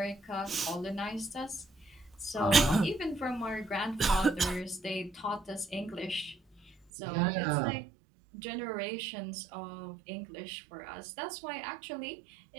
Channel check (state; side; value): drops out; left; at 6.7 s